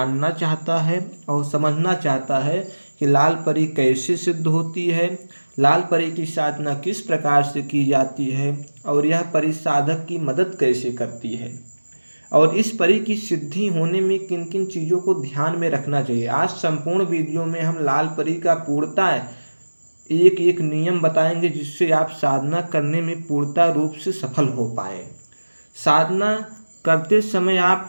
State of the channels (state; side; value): inverted; both; correlation -1.00